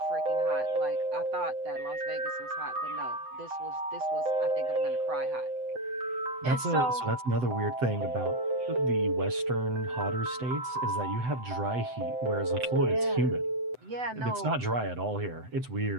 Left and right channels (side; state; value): left; late; 7.9 ms